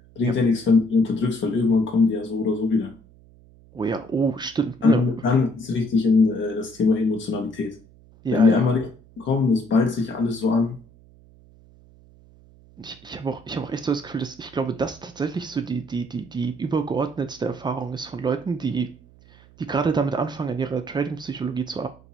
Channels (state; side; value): noise; right; hum, 26 dB below the sound